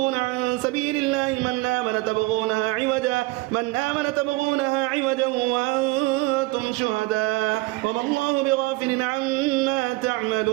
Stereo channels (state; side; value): quieter; left; 21.9 dB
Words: عن سبيل الله من آمن تبغونها عوجا وأنتم شهداء وما الله بغافل عما